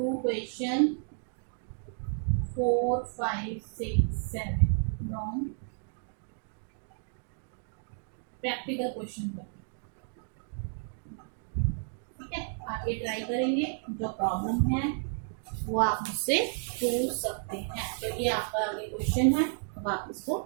question 4 5 6 7 from practical question करते हैं, ठीक है। आप ये ट्राई करेंगे, जो प्रॉब्लम है वो आप मुझसे पूछ सकते हैं, क्योंकि आपका आगे क्वेश्चन है, अब आप इसको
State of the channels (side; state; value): left; silent; 57 dB below the other